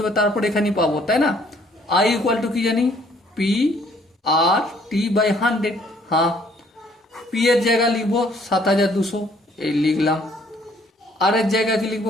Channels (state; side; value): normal; both; correlation 0.62